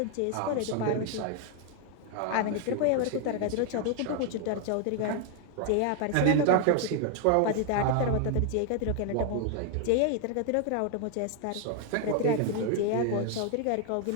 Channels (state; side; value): different; both; correlation 0.00